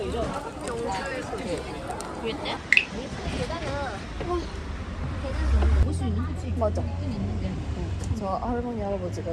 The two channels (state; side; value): identical; both; correlation 1.00